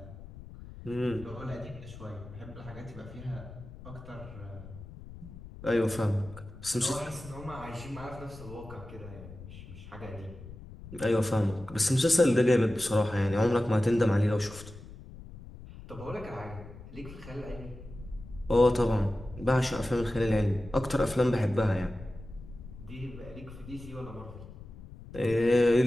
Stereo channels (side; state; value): left; noise; rumble, 15 dB below the sound